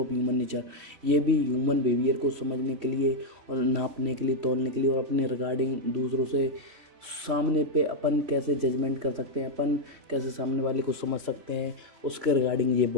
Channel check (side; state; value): left; late; 3.1 ms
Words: ह्यूमन नेचर। ये भी ह्यूमन बिहेवियर को समझने के लिए और नापने के लिए, तोलने के लिए, और अपने रिगार्डिंग दूसरों से सामने पे अपन कैसे जजमेंट कर सकते हैं, अपन कैसे सामने वाले को समझ सकते हैं, उसके रिगार्डिंग ये